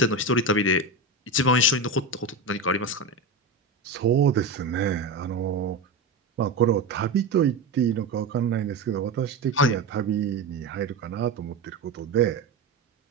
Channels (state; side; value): quieter; left; 3.1 dB